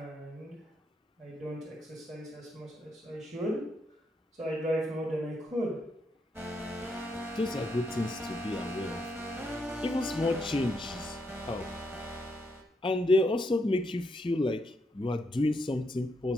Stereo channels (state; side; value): normal; both; correlation 0.79